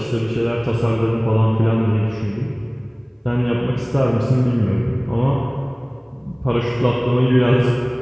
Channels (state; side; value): identical; both; correlation 1.00